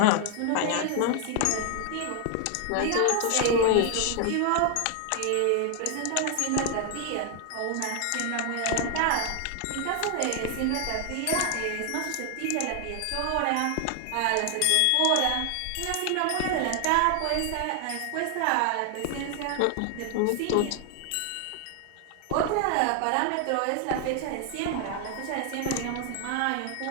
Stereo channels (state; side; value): different; both; correlation 0.00